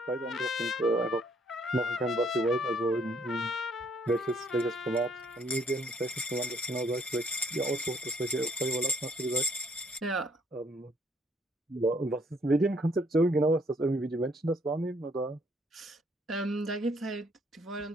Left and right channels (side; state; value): both; normal; correlation 0.66